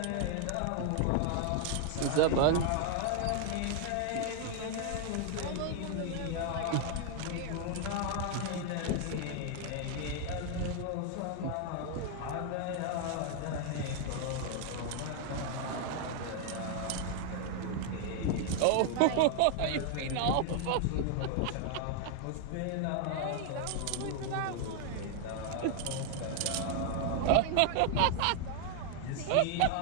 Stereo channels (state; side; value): different; both; correlation 0.00